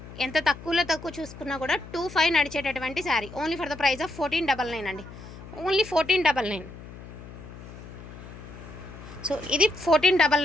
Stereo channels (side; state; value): left; noise; hum, 15 dB below the sound